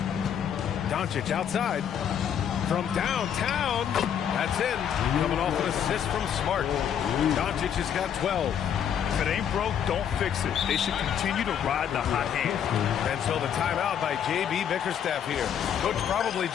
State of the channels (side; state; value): right; quieter; 8.8 dB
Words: Doncic outside. From downtown. That's in. Coming off an assist from Smart. Doncic has got 12. If it ain't broke, don't fix it. They should continue to ride the hot hand. And so the timeout by J.B. Bickerstaff here. Coach probably